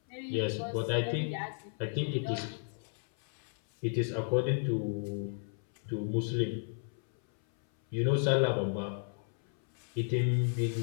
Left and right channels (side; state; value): right; silent; 56 dB below the other